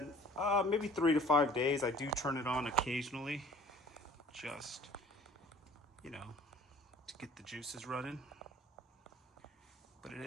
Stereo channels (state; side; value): normal; both; correlation 0.50